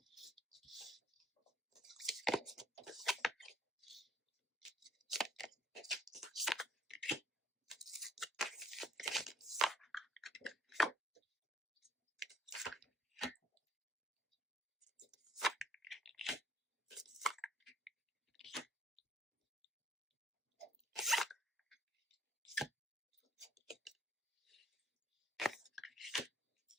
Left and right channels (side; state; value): both; normal; correlation 0.64